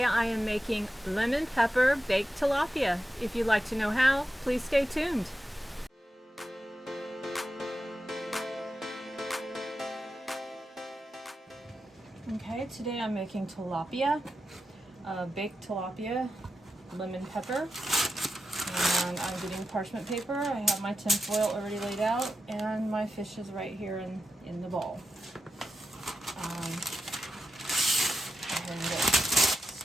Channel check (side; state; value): both; normal; correlation 0.90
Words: I am making lemon pepper baked tilapia. If you'd like to know how, please stay tuned. Okay, today I'm making tilapia, baked tilapia, lemon pepper, and I'm getting parchment paper. I have my tin foil already laid out and my fish is right here in the bowl. Go ahead and get